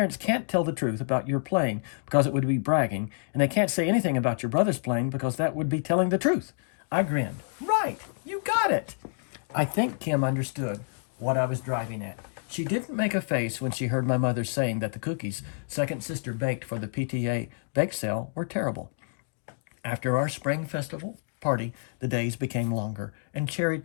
can't tell the truth about your playing because it would be bragging, and they can't say anything about your brother's playing because that would be telling the truth." I grinned. "Right, you got it." I think Kim understood what I was driving at. She didn't make a face when she heard my mother saying that the cookies second sister baked for the PTA bake sale were terrible. After our spring festival party, the days became longer, and cherry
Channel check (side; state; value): right; silent; digital silence